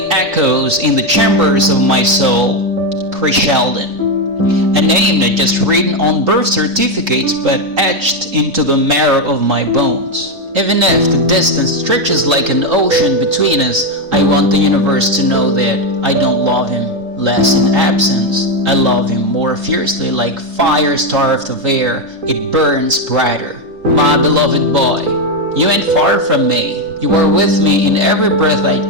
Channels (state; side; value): late; left; 3.8 ms